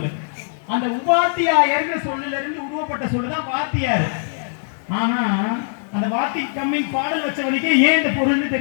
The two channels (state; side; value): silent; right; digital silence